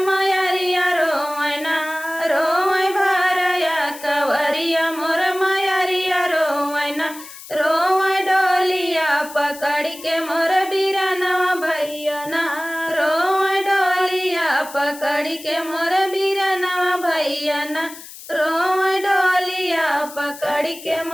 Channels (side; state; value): left; noise; hiss, 16 dB below the sound